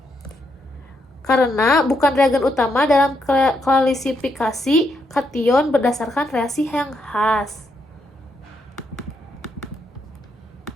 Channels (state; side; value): normal; both; correlation 0.78